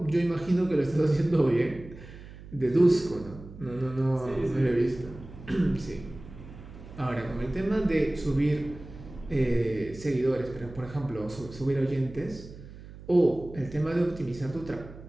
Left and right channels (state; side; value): noise; right; hum, 16 dB below the sound